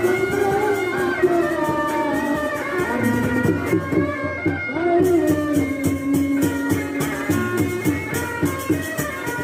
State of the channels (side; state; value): both; identical; correlation 1.00